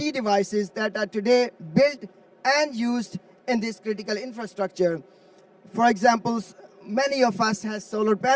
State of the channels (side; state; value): both; identical; correlation 1.00